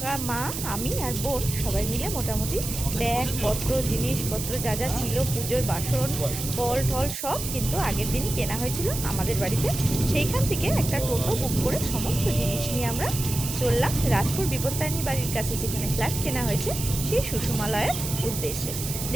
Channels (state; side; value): noise; right; hiss, 6 dB below the sound